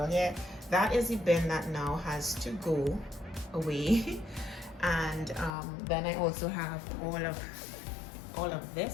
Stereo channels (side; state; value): right; drops out; at 5.6 s